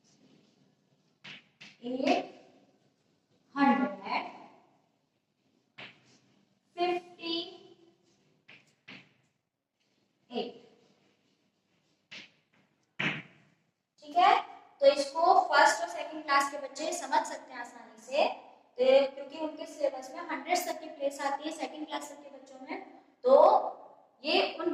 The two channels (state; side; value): identical; both; correlation 1.00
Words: 800 58। ठीक है, तो इसको फर्स्ट और सेकंड क्लास के बच्चे समझ सकते हैं आसानी से, तो क्योंकि उनके सिलेबस में 100 तक की प्लेस आती है सेकंड क्लास तक के बच्चों में, तो ये उन